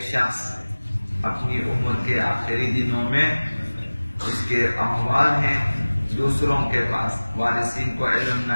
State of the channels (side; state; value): both; inverted; correlation -1.00